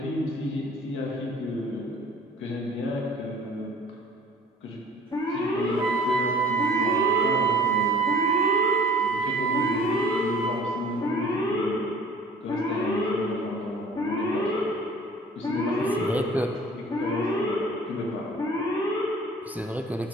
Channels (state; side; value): normal; both; correlation 0.49